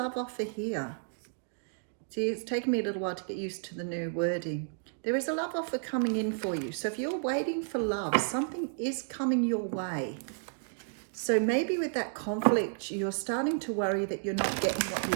offer here. See, it's taken me a little while to get used to the new wording. There is a love offer coming in for you. So if you're waiting for love, something is coming your way. So maybe with that conflict, you're starting to worry that you're not getting what you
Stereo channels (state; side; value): silent; left; digital silence